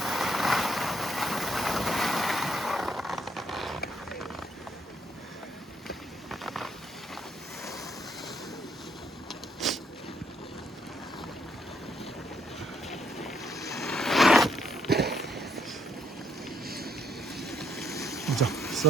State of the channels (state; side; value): normal; both; correlation 0.72